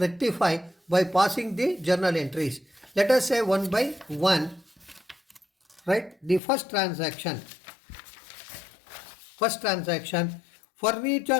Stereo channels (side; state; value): right; drops out; at 6.4 s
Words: by passing the journal entries. Let us say one by one. Right? The first transaction,